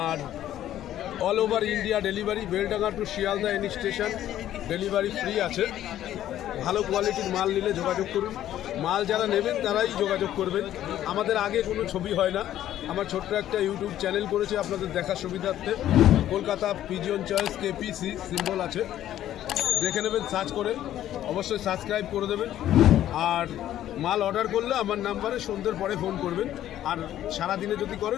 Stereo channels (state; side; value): quieter; right; 12.2 dB